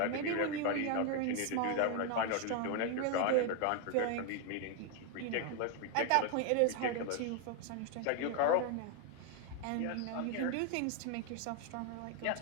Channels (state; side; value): different; both; correlation 0.01